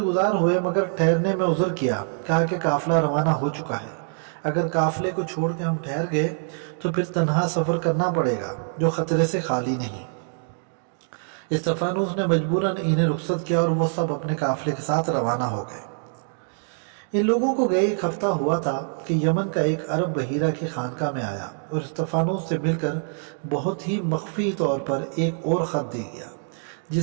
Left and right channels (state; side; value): silent; left; 57 dB below the other